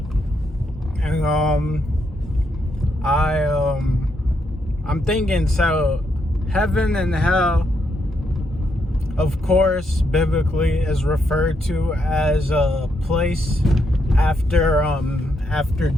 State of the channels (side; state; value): both; normal; correlation 0.78